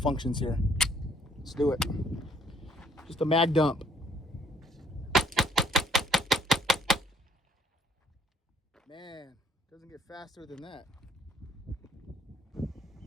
here. Let's do it. Just a mag dump. Man, doesn't get faster than that.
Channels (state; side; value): normal; both; correlation 0.64